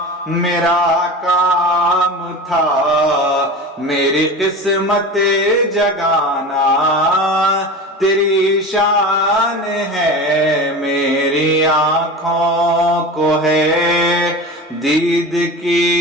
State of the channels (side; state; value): both; normal; correlation 0.31